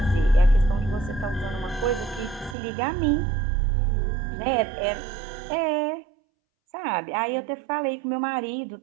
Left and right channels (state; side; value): drops out; left; at 2.6 s